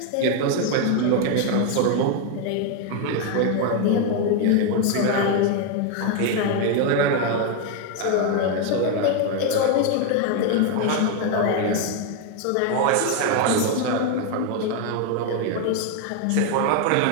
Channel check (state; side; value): different; both; correlation 0.01